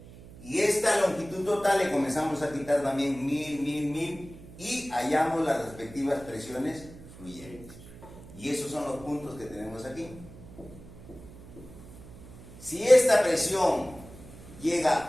Y esta longitud total le comenzamos a quitar también 1000 y hallamos las respectivas presiones fluyentes. Y esos son los puntos que tenemos aquí. Si esta presión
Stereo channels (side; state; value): right; noise; hum, 18 dB below the sound